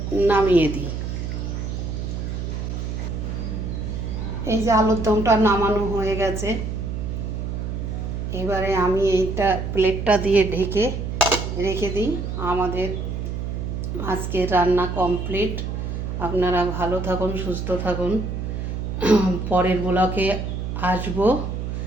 নামিয়ে দিই। এই যে আলুর দমটা নামানো হয়ে গেছে। এবারে আমি এইটা প্লেটটা দিয়ে ঢেকে রেখে দিই। আমাদের আজকের রান্না কমপ্লিট। আপনারা ভালো থাকুন, সুস্থ থাকুন। পরের ব্লগে আসবো।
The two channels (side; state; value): right; noise; hum, 4 dB below the sound